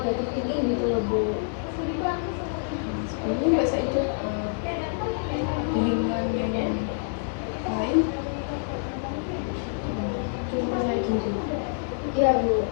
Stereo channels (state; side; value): silent; right; digital silence